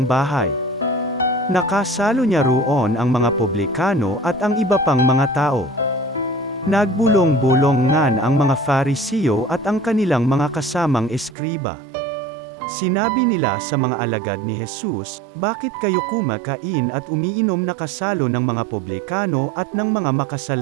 bahay. Nakasalo niya roon ang mga publikano at ang iba pang mga tao. Nagbulong-bulongan ang mga Fariseo at ang kanilang mga kasamang eskriba. Sinabi nila sa mga alagad ni Jesus, "Bakit kayo kumakain at umiinom na kasalo ng mga publikano at ng mga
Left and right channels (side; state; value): left; drops out; at 11.4 s